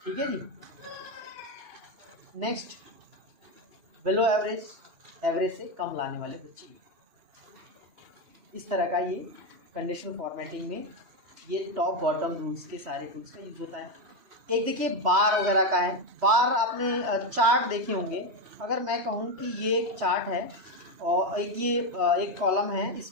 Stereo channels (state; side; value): late; left; 2.8 ms